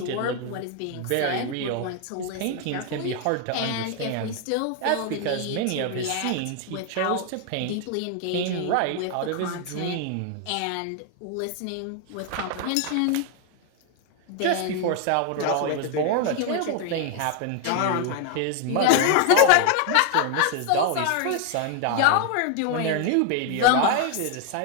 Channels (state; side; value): different; both; correlation 0.00